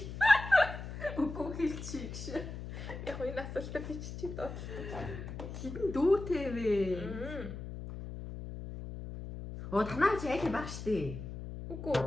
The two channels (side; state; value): left; noise; hum, 9 dB below the sound